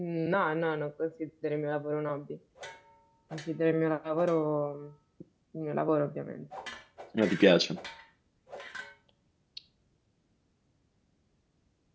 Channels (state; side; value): identical; both; correlation 1.00